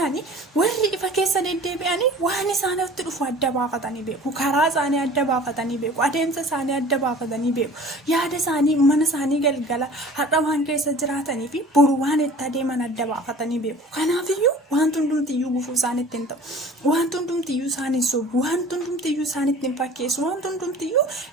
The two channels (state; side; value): normal; both; correlation 0.45